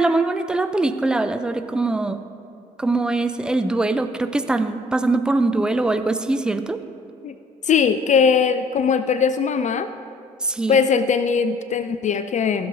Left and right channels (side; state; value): both; normal; correlation 0.60